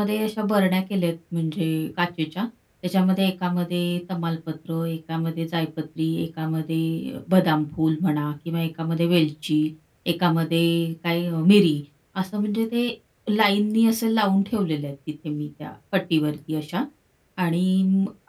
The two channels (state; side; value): identical; both; correlation 1.00